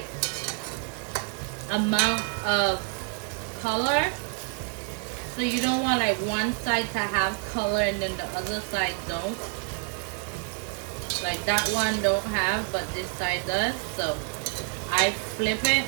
amount of color. So you don't want like one side to have color and then the other side don't. Like that one don't have, but this side does. So I flip it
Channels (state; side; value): quieter; left; 38.2 dB